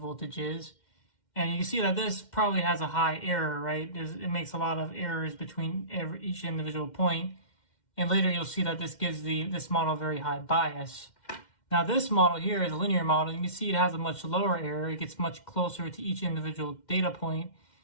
is. And you can see that this probably has a high error, right? It makes a lot of errors between each individual point. And later you'll see that this gives this model a very high bias. Now this model here is a linear model. You can see it has a much lower error. It gets much closer to each individual data point,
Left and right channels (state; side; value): late; right; 2.1 ms